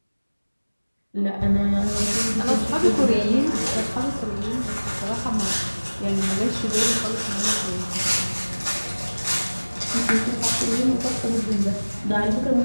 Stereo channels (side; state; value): both; inverted; correlation -1.00